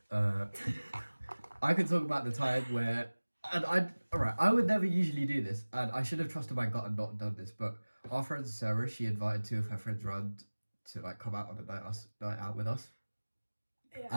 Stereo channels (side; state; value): both; inverted; correlation -1.00